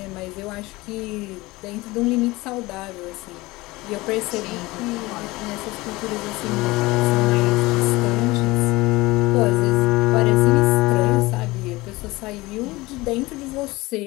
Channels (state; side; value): quieter; right; 21.0 dB